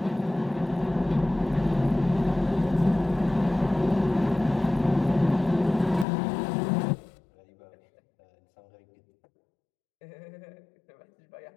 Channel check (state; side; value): drops out; right; at 6.1 s